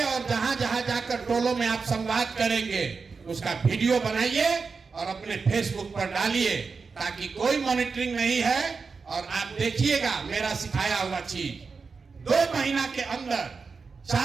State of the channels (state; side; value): quieter; left; 4.9 dB